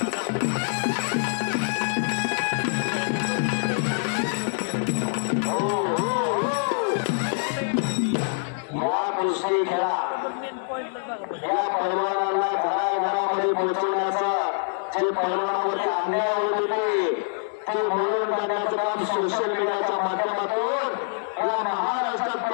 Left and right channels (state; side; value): silent; right; digital silence